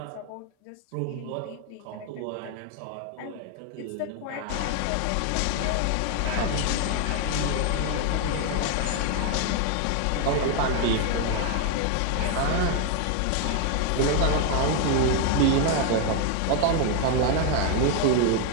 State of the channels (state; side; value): different; both; correlation 0.00